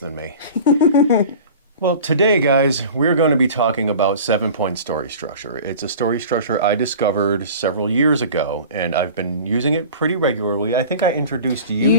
me. Well, today, guys, we're going to be talking about 7-point story structure. It's a story structure I discovered several years ago, and I've been using it pretty regularly. I think I introduced you to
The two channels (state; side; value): inverted; both; correlation -0.40